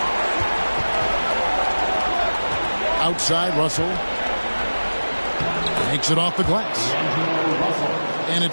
Outside Russell. Takes it off the glass. And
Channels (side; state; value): both; inverted; correlation -1.00